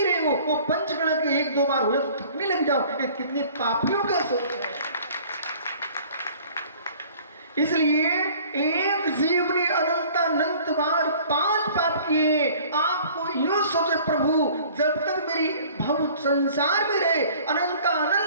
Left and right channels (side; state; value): both; inverted; correlation -0.50